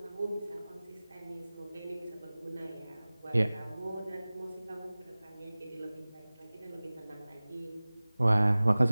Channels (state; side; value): inverted; both; correlation -0.99